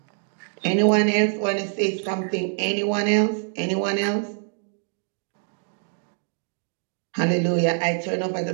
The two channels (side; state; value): left; silent; 59 dB below the other